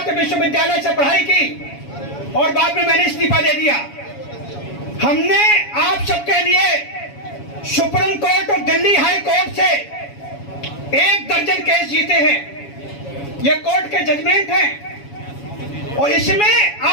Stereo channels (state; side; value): late; right; 7.2 ms